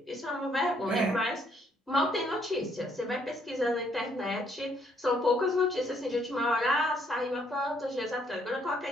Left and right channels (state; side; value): normal; both; correlation 0.69